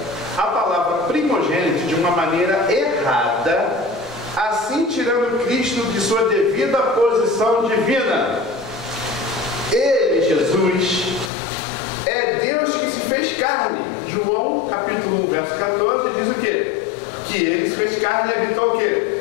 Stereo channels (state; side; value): drops out; right; at 11.3 s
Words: a palavra primogênito de uma maneira errada, assim tirando Cristo de sua devida posição divina. Ele, Jesus, é Deus que se fez carne. João, capítulo 1, verso 14, diz o quê? Que ele se fez carne e habitou o quê?